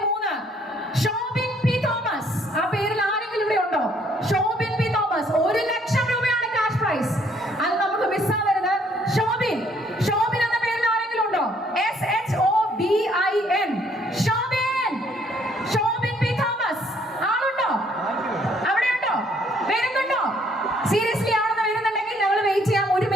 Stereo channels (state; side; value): normal; both; correlation 0.65